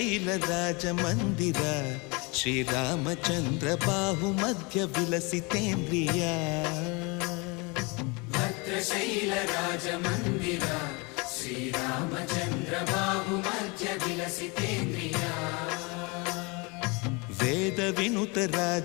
ರಾಜ ಮಂದಿರ ಶ್ರೀರಾಮಚಂದ್ರ ಬಾಹು ಮಧ್ಯ ವಿಲಸಿತೇಂದ್ರಿಯ ಭದ್ರಶೈಲ ರಾಜ ಮಂದಿರ ಶ್ರೀರಾಮಚಂದ್ರ ಬಾಹು ಮಧ್ಯ ವಿಲಸಿತೇಂದ್ರಿಯ ವೇದ ವಿನುತ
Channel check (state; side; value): quieter; right; 28.5 dB